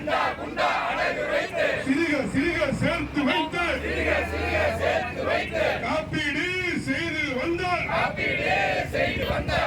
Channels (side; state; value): both; identical; correlation 1.00